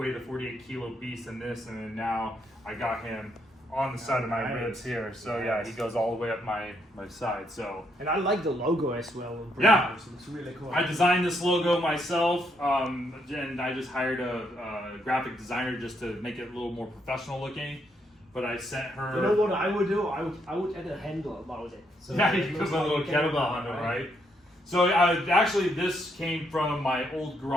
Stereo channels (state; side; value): normal; both; correlation 0.75